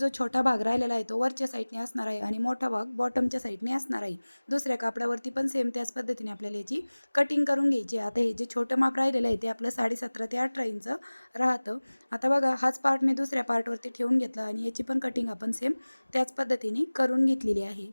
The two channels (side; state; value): both; inverted; correlation -1.00